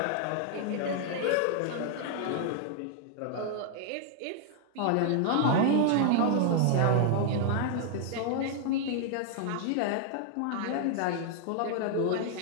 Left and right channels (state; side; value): different; both; correlation 0.00